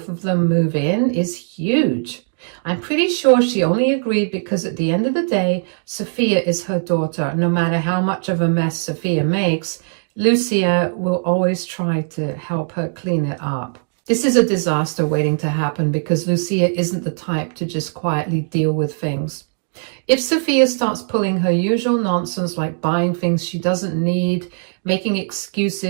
of them move in is huge. I'm pretty sure she only agreed because at the end of the day, Sophia is her daughter. No matter how much of a mess Sophia makes, Lucia will always try to help her clean it up. This is a disaster waiting to happen because Lucia isn't the type to just quietly deal with things. If Sophia starts pulling her usual nonsense like buying things she doesn't need, making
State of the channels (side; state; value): left; silent; digital silence